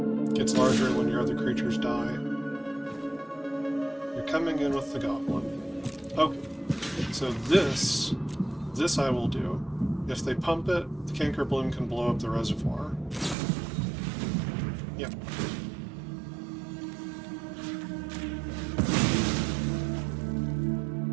Gets larger when your other creatures die. You're coming in with the goblin. Okay, so this I will do. If they pump it, the Canker Bloom can blow up the reservoir. Yep.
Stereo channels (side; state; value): left; drops out; at 13.4 s